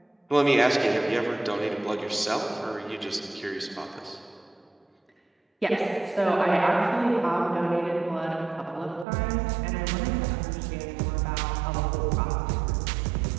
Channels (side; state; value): left; drops out; at 9.1 s